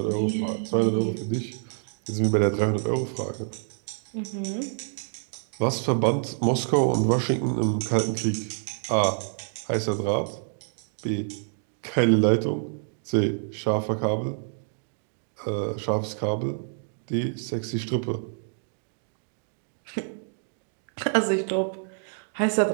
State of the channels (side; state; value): left; silent; digital silence